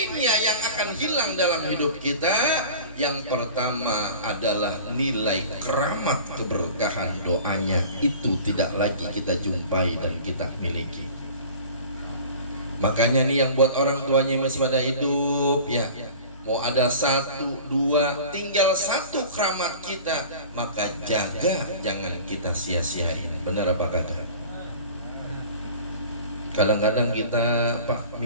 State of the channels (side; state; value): both; inverted; correlation -0.41